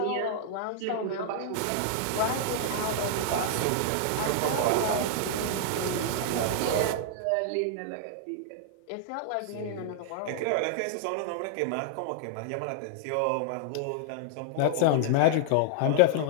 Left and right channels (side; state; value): both; different; correlation -0.01